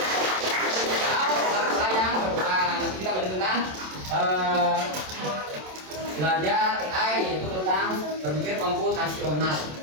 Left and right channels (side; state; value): left; late; 27 ms